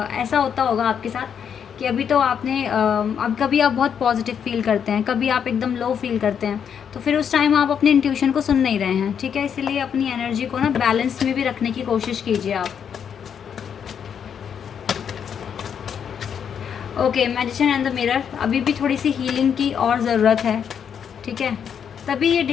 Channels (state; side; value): quieter; right; 7.8 dB